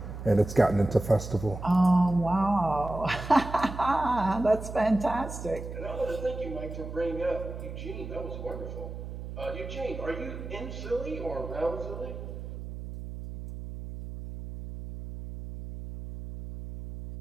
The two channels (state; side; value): noise; right; hum, 9 dB below the sound